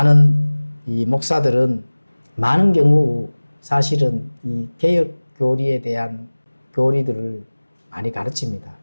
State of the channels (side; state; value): both; inverted; correlation -1.00